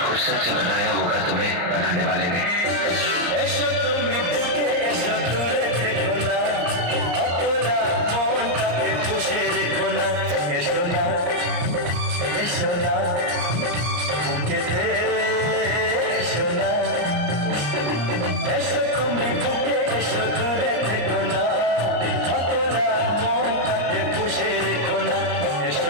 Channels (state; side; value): late; left; 34 ms